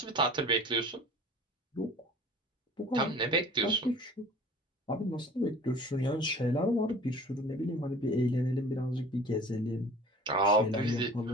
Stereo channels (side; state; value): both; normal; correlation 0.44